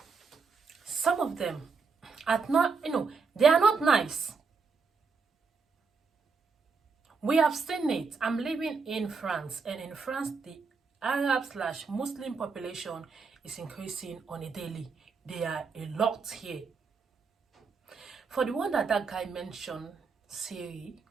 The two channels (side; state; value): left; quieter; 4.9 dB